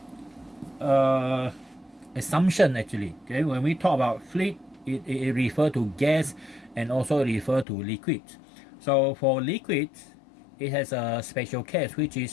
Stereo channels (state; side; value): drops out; right; at 7.7 s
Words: assumption actually. Okay, when we talk about fluid, it refers to gas and also refer to liquids. So for liquids, it has a special case, which